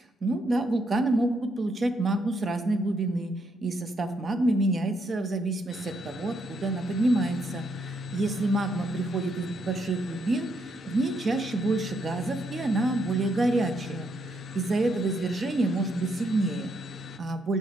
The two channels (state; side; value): normal; both; correlation 0.76